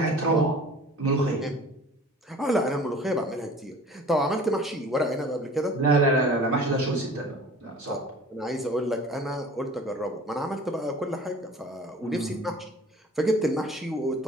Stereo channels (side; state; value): both; normal; correlation 0.45